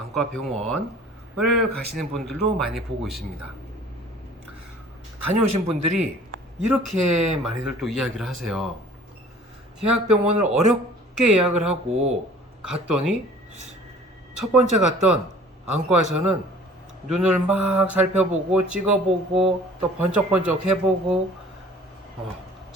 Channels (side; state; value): both; normal; correlation 0.49